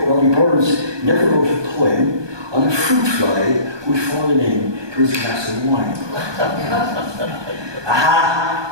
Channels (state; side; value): late; left; 1.2 ms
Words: Burns never wrote a poem on a fruit fly who had fallen in to his glass of wine.